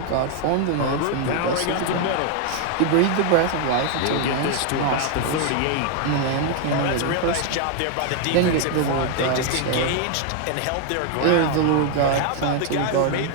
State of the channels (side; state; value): both; different; correlation 0.00